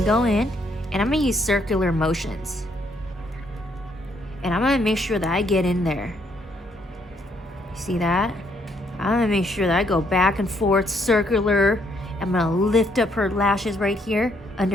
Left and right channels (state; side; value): normal; both; correlation 0.70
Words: go in and I'm gonna use circular motions, and I'm gonna make sure that I get in there. See that? I'm gonna make sure that I go back and forth circular. I'm gonna lift up her lashes right here